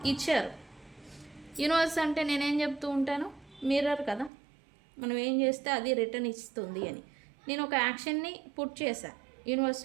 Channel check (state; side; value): drops out; left; at 4.3 s